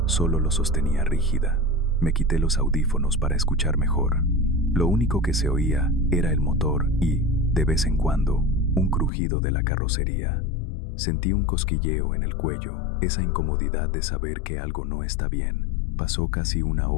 solo lo sostenía rígida. Me quité los audífonos para escuchar mejor. Lo único que se oía era el motor y, de vez en cuando, un crujido de la carrocería. Sentí un cosquilleo en el cuello, esa incomodidad de saber que algo no está bien. Pasó casi una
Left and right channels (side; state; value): right; drops out; at 9.1 s